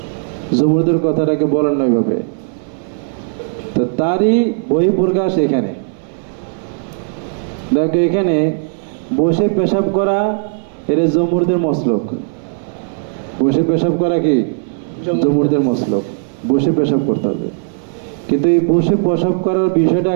জুমহুরদের কথাটাকে বলেন না ওইভাবে। তো তারই বহিঃপ্রকাশ এখানে দেখো, এখানে বসে পেশাব করা এটা জুমহুরদের মসলক। বসে পেশাব করা কি জুমহুরদের মসলক, বসে পেশাব করতে হবে। কিন্তু এই বসে পেশাব করার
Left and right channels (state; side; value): silent; left; 60 dB below the other